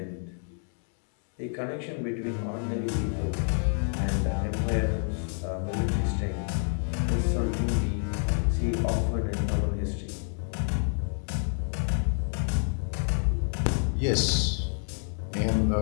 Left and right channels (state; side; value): silent; right; 57 dB below the other